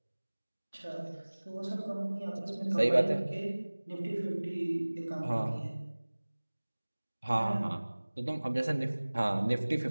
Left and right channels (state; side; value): inverted; both; correlation -1.00